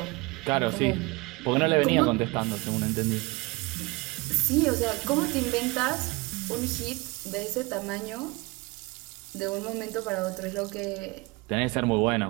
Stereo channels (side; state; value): left; quieter; 24.6 dB